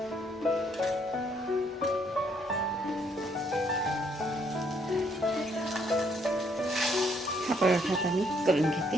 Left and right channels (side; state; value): both; normal; correlation 0.69